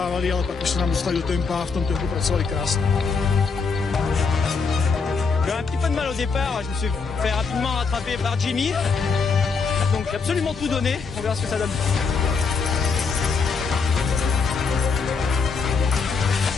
ale pak už se nám dostali do tempa a v tom tempu pracovali krásně. J'ai un petit peu de mal au départ, je me suis fait rapidement rattraper par Jimmy. Donc j'ai absolument tout donné, on verra ce que ça donne.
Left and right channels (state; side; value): quieter; right; 4.9 dB